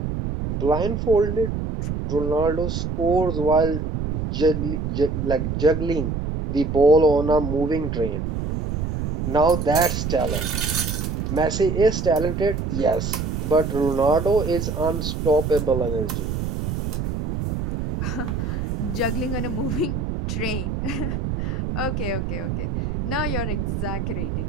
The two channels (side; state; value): right; noise; rumble, 2 dB below the sound